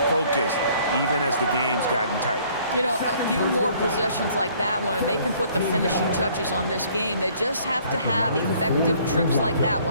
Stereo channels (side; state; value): both; inverted; correlation -0.59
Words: even as the game's gotten tight. You know, a few more possessions like that one, and they can put the finishing touches on this game. They just have to have effective trips like that